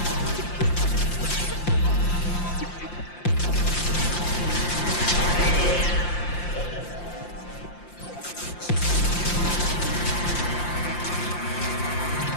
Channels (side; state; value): right; late; 5.7 ms